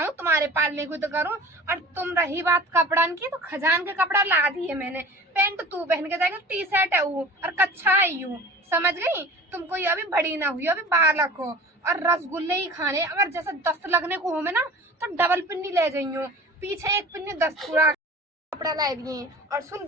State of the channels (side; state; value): both; normal; correlation 0.41